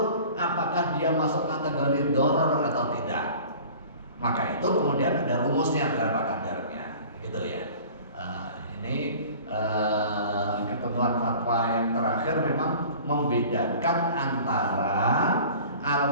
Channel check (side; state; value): both; inverted; correlation -0.44